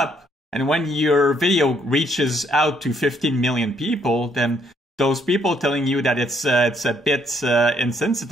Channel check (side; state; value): both; normal; correlation 0.69